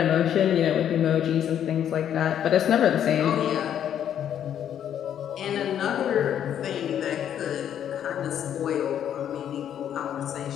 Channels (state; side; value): quieter; right; 9.7 dB